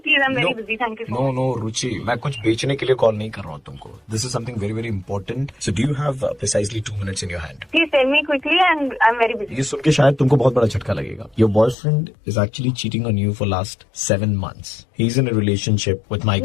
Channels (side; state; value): right; drops out; at 11.8 s